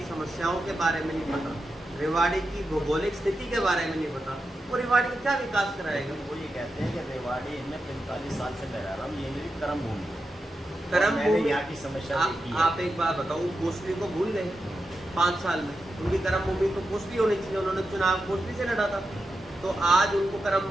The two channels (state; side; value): normal; both; correlation 0.89